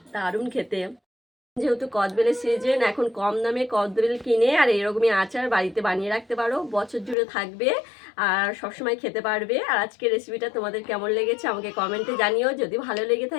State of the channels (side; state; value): right; drops out; at 7.2 s